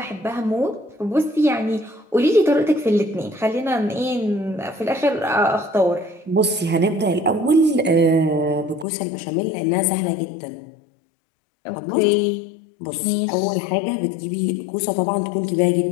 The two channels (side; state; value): right; drops out; at 8.8 s